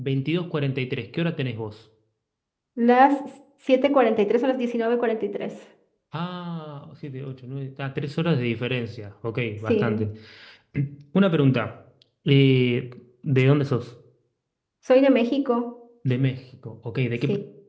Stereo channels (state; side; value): identical; both; correlation 1.00